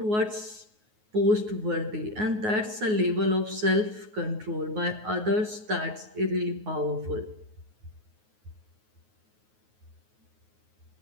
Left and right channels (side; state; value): left; late; 9.5 ms